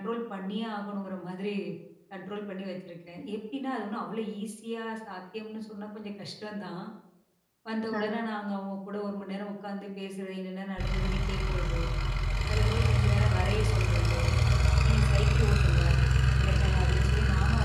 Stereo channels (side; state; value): both; identical; correlation 1.00